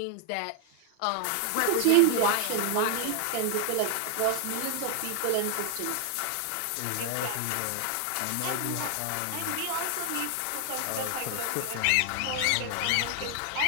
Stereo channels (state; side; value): different; both; correlation 0.00